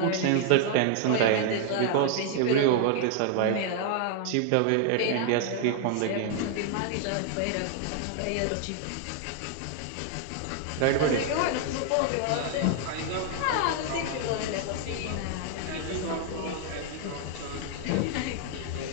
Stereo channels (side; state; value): both; different; correlation 0.00